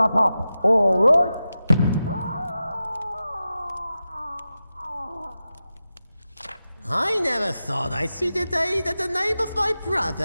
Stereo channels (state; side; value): inverted; both; correlation -0.92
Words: up, all right? I never thought I'd see the day that the name of my